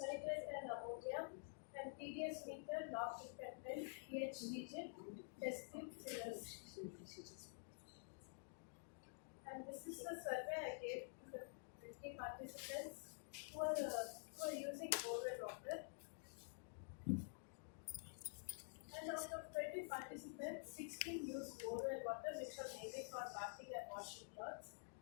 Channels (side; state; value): right; silent; digital silence